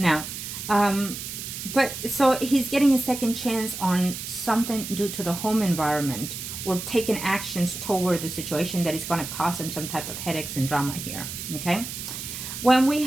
but so he's getting a second chance on something due to the home environment, or taking actions toward the situation that is going to cause him some type of headaches and drama here. Okay, when we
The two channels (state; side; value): noise; right; hiss, 8 dB below the sound